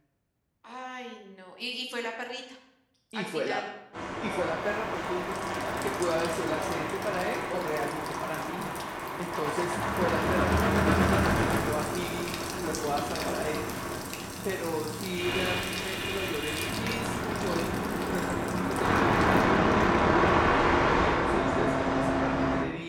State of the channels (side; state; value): both; identical; correlation 1.00